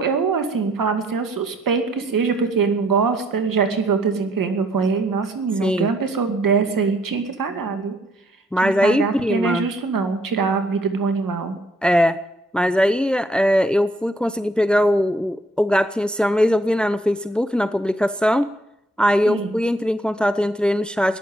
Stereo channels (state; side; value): normal; both; correlation 0.67